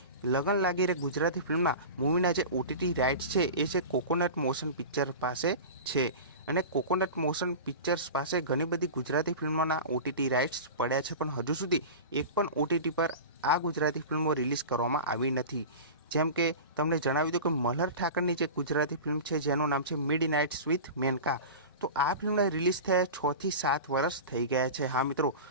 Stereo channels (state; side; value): inverted; both; correlation -0.31